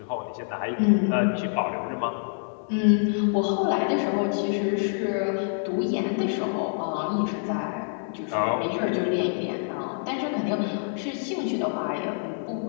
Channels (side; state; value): right; silent; digital silence